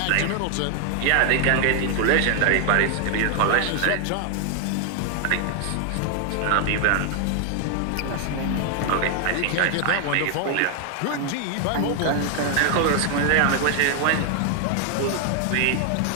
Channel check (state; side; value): different; both; correlation 0.00